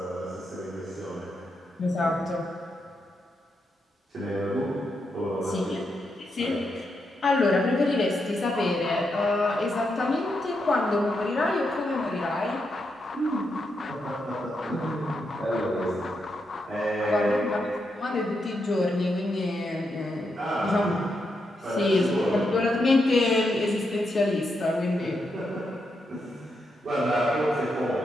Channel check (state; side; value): normal; both; correlation 0.83